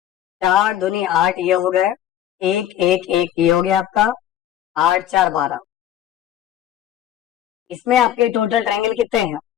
4 दूनी 8 ये हो गए, एक एक एक ये हो गया आपका, 8 4 12। इसमें आपके टोटल ट्रायंगल कितने हैं,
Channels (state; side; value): quieter; right; 11.3 dB